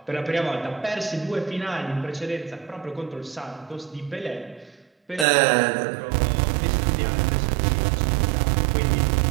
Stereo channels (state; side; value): drops out; left; at 5.2 s